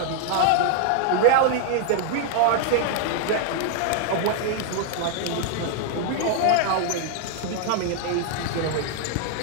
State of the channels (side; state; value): both; different; correlation 0.00